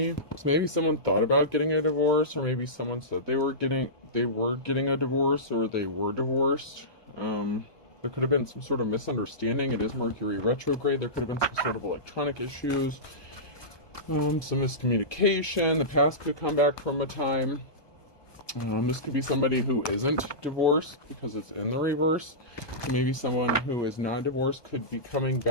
So maybe someone thought about getting a divorce, or maybe someone said they were getting a divorce, or they were divorced. There could have been some sort of misunderstanding. It is Mercury retrograde. There could have been some sort of electronic issues, some miscommunication. The past could come back from a time. This could be somebody who isn't divorced because it's in the reverse. Maybe someone who is not divorced could be coming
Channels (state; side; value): late; right; 1.2 ms